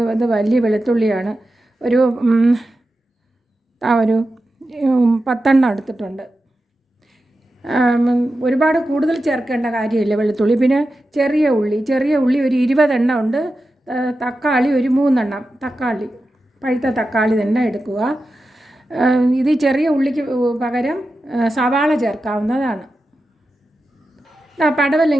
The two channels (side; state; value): both; normal; correlation 0.91